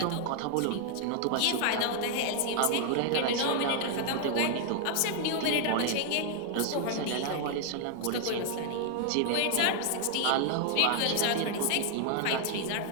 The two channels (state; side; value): different; both; correlation 0.00